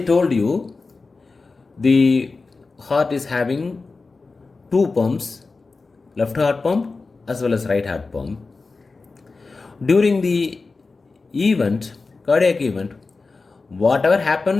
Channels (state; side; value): quieter; right; 4.0 dB